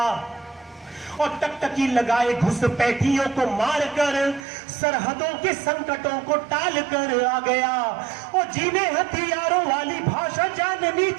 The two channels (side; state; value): left; drops out; at 4.5 s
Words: और टकटकी लगाए घुसपैठियों को मारकर सरहदों के संकटों को टाल कर आ गया। और जिन्हें हथियारों वाली भाषा जाननी